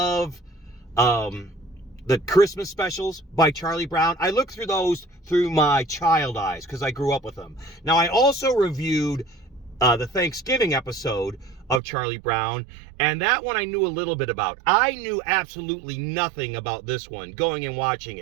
the Christmas specials by Charlie Brown. I look through those through my child eyes because I grew up with them. Now, I also reviewed the Thanksgiving episode of Charlie Brown, and that one I knew a little bit about. I knew absolutely nothing about this one going and watching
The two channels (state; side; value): drops out; left; at 11.8 s